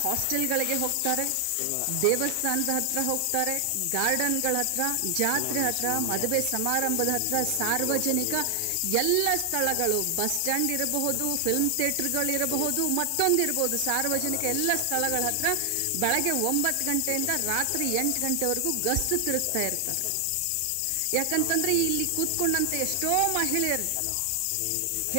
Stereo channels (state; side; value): different; both; correlation 0.00